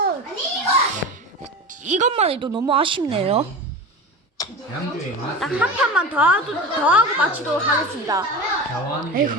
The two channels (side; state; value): both; normal; correlation 0.28